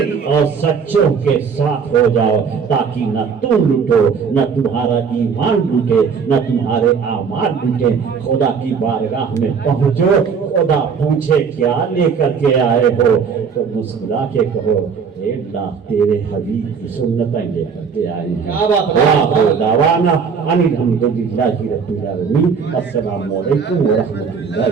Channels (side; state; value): left; quieter; 6.1 dB